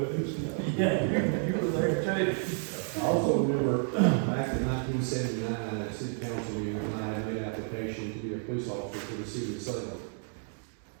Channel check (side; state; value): left; silent; 57 dB below the other